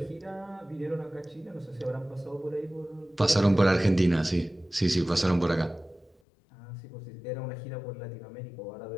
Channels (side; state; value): right; drops out; at 6.2 s